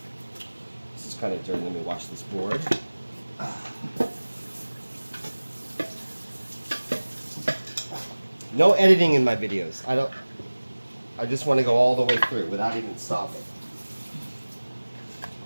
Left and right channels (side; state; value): both; inverted; correlation -1.00